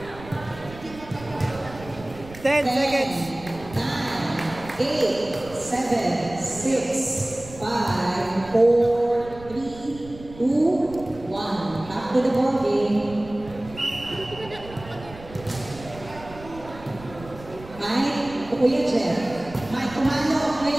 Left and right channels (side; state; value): right; noise; rumble, 17 dB below the sound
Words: 10 seconds. 9, 8, 7, 6, 5, 4, 3, 2, 1. to the ball game. Mike, Kuya Jeff. Mike, kumano,